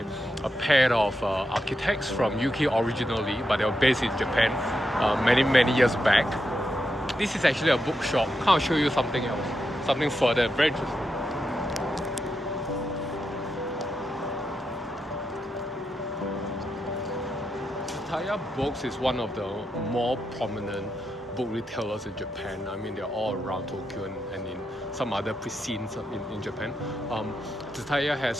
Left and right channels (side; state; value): both; normal; correlation 0.85